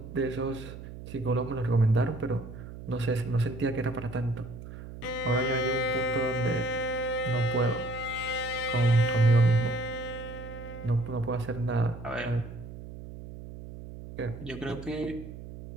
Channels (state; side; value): noise; right; hum, 12 dB below the sound